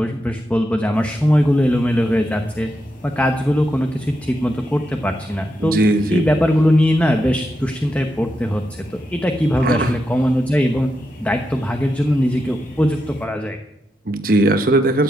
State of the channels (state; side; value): normal; both; correlation 0.85